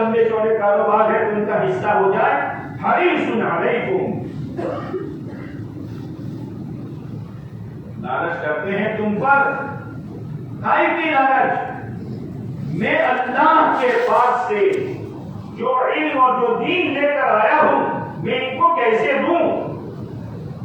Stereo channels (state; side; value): identical; both; correlation 1.00